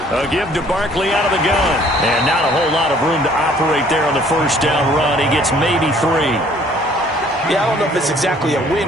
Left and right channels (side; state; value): both; normal; correlation 0.58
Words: A give to Barkley out of the gun. And not a whole lot of room to operate there on the first down run. He gets maybe 3. Yeah, I don't know if it's exactly a